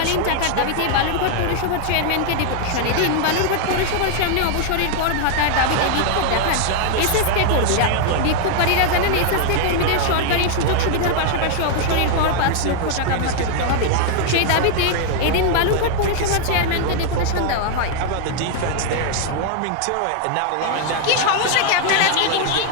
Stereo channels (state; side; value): different; both; correlation 0.00